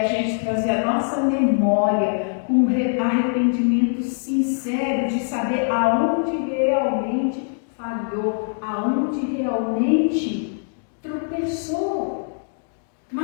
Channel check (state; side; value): silent; right; digital silence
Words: gente trazer a nossa memória um arrependimento sincero de saber aonde realmente falhou, aonde realmente tropeçou.